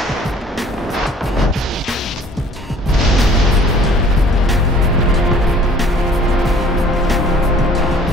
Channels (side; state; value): both; normal; correlation 0.53